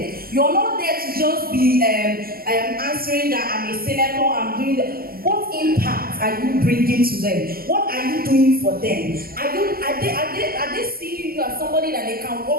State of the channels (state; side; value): late; left; 0.43 ms